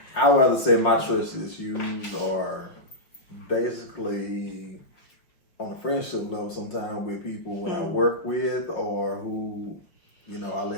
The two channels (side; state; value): right; late; 5.8 ms